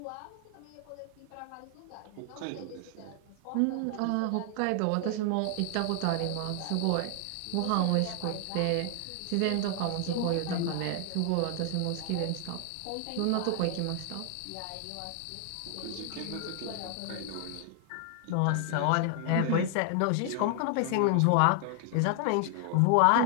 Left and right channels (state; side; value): different; both; correlation 0.00